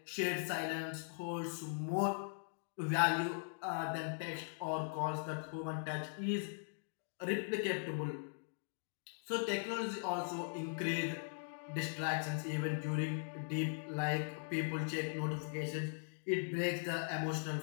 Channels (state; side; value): silent; right; digital silence